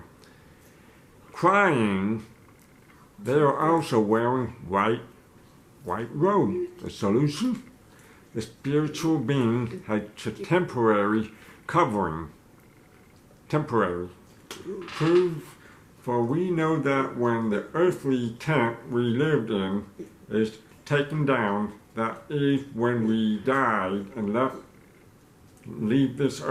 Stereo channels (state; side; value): identical; both; correlation 1.00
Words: crying, they are also wearing white robes. The solution? The spiritual being had a temporary covering. Temporary. Prove, for we know that when the earthly tent we lived in is taken down, that is when we died and leave this